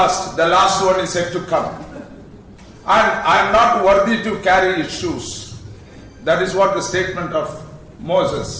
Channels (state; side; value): identical; both; correlation 1.00